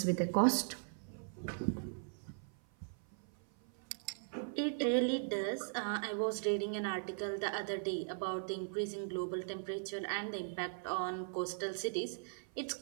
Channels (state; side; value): silent; left; 52 dB below the other